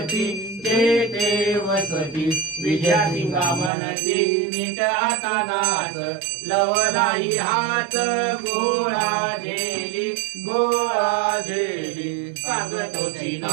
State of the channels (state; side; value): drops out; left; at 3.7 s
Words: जे ते वसती विजया सिंगा म्हणती नीट आता नाच लवलाही हात गोळा झेली गोळा झेली सांगतोची